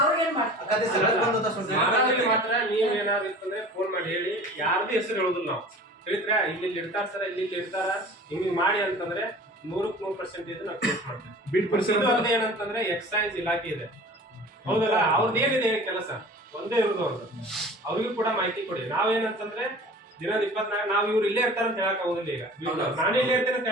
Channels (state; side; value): normal; both; correlation 0.42